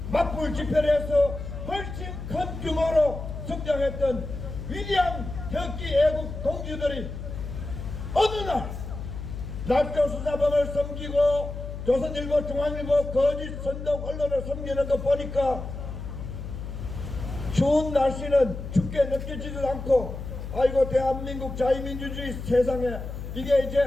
맞불 집회를 해서 훨씬 큰 규모로 성장했던 위대한 태극기 애국 동지들이 어느 날 날조 수사범을 섬기고 조선일보, 중앙일보 거짓 선동 언론을 섬기는 거 보니까 추운 날씨는 춥게 느껴지지도 않고 아이고 대한민국 자유민주주의 세상에 이게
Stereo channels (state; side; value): noise; left; hum, 8 dB below the sound